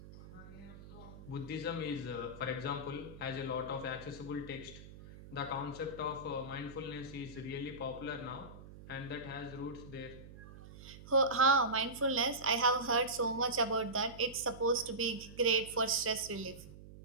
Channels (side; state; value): right; noise; hum, 16 dB below the sound